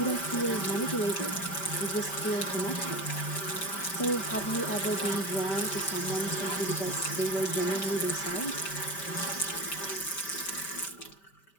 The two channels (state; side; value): late; right; 5.1 ms